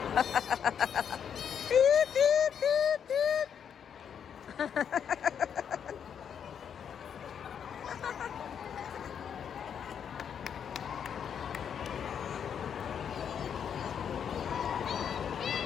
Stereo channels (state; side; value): quieter; right; 8.0 dB